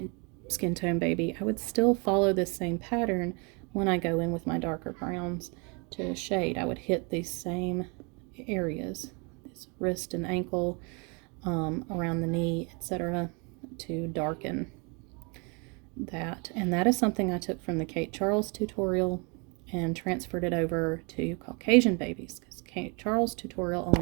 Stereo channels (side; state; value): left; quieter; 32.1 dB